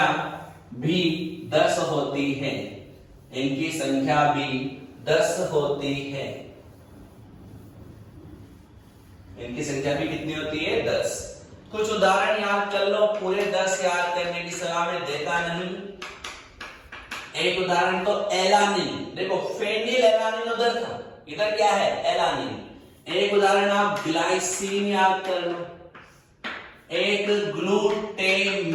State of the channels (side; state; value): both; identical; correlation 1.00